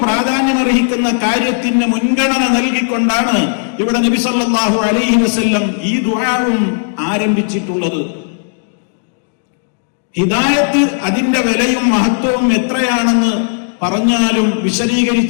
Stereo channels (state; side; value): silent; right; digital silence